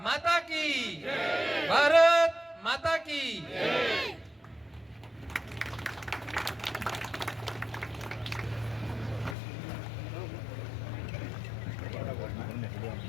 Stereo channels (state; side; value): drops out; right; at 9.3 s